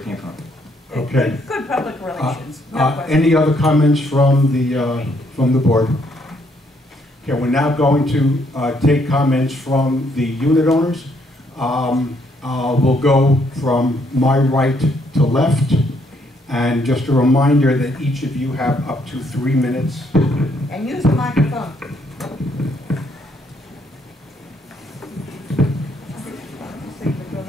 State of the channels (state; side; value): normal; both; correlation 0.71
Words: came from. Okay. Good public relations, no question. Any other comments from the board? Okay, we're now going to take comments from the unit owners. We'll go from my right to left. And just a reminder that each of you have up to 3 minutes. And use the microphone.